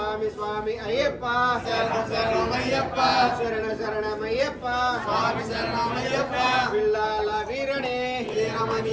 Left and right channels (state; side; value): identical; both; correlation 1.00